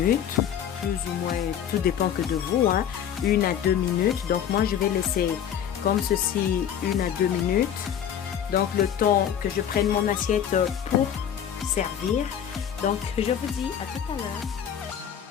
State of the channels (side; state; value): right; quieter; 9.2 dB